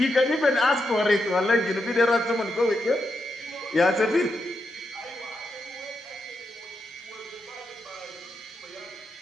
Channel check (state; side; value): normal; both; correlation 0.85